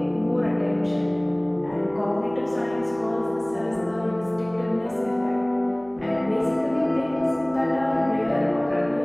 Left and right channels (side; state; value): right; noise; hum, 25 dB below the sound